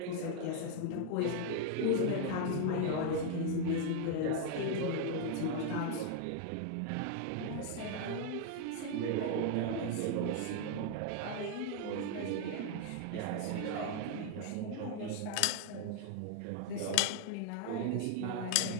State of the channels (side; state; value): both; different; correlation 0.00